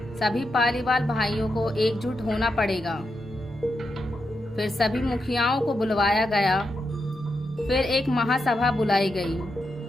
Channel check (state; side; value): normal; both; correlation 0.85